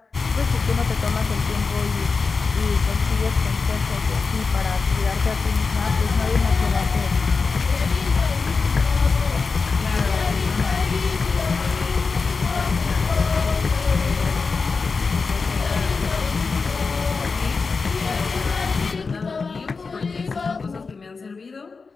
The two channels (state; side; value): quieter; right; 4.6 dB